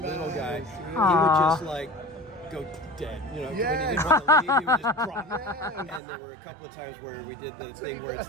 little guy. He would just like go dead, when he didn't want to leave, he would just drop. And there were a couple of times where we did the thing where it's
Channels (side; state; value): left; drops out; at 6.0 s